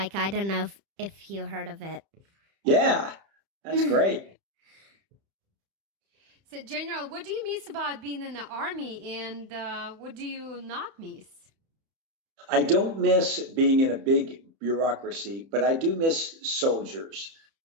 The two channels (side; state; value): left; late; 30 ms